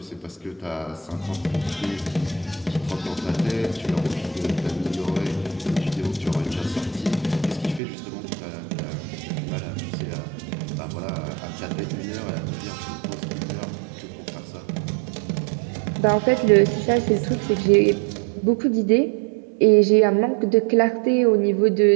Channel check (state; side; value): drops out; left; at 7.8 s